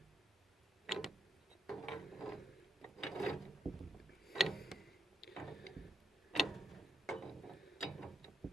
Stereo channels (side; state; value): both; normal; correlation 0.78